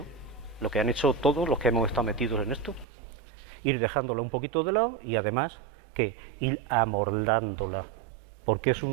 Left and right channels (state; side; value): drops out; left; at 2.9 s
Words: lo que han hecho todos los que hemos estado metidos en esto. Ir dejándola un poquito de lado y además, ¿qué? Ir amordándola, porque es